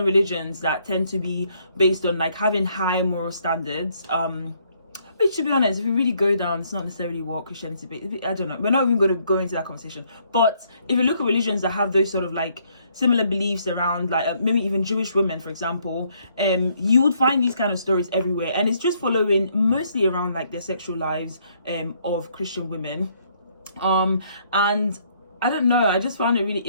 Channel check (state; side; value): inverted; both; correlation -0.69